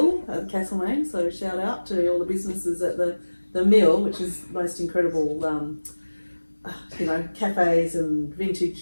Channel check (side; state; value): both; inverted; correlation -1.00